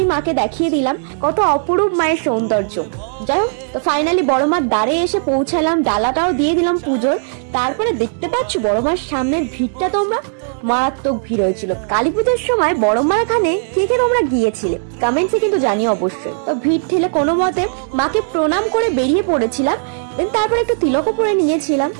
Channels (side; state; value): left; silent; digital silence